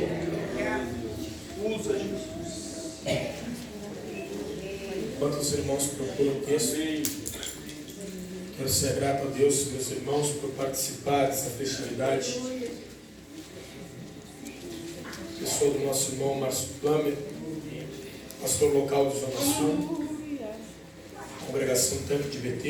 Enquanto os irmãos procuram o texto, quero ser grato a Deus, meus irmãos, por participar dessa festividade. Eu sou do nosso irmão Márcio Plummer, pastor local de Zona Sul, congregação Tanque de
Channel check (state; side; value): identical; both; correlation 1.00